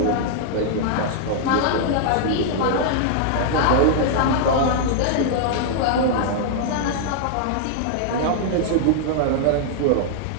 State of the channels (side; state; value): both; different; correlation -0.01